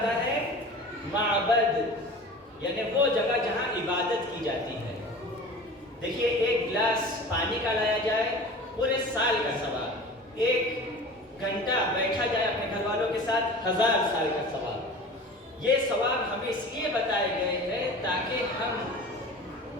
ہے معبد، یعنی وہ جگہ جہاں عبادت کی جاتی ہے۔ دیکھیے ایک گلاس پانی کا لایا جائے پورے سال کا ثواب، ایک گھنٹہ بیٹھا جائے اپنے گھر والوں کے ساتھ 1000 سال کا ثواب۔ یہ ثواب ہمیں اس لیے بتائے گئے ہیں تاکہ ہم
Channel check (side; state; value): both; normal; correlation 0.38